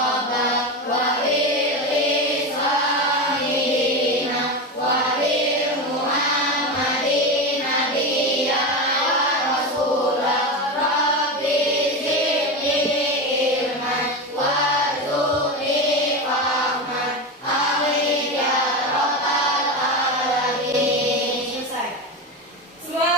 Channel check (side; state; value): both; normal; correlation 0.19